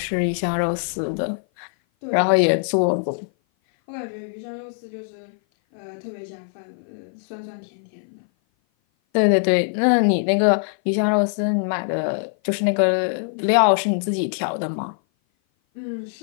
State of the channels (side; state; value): right; silent; 57 dB below the other